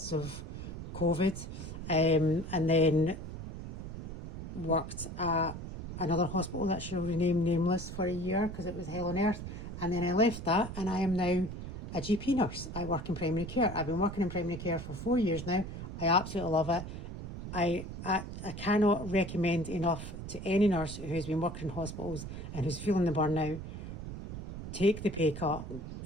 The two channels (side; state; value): right; noise; rumble, 8 dB below the sound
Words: of COVID, and then worked at another hospital that shall remain nameless for a year because it was hell on earth, and then I left that and I am now a GP nurse. I work in primary care. I've been working in primary care for 4 years now. I absolutely love it. I cannot recommend enough to any nurse who's been working in hospitals and who's feeling the burnout, take the pay cut